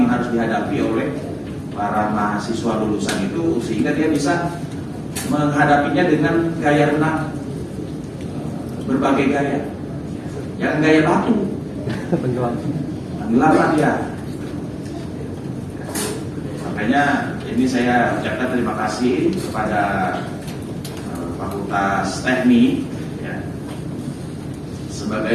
yang harus dihadapi oleh para mahasiswa lulusan itu, sehingga dia bisa menghadapinya dengan gaya renang berbagai gaya. Jangan gaya batu. Tenggelam dia. Makanya ini saya ucapkan terima kasih kepada Fakultas Teknik ya,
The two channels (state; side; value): identical; both; correlation 1.00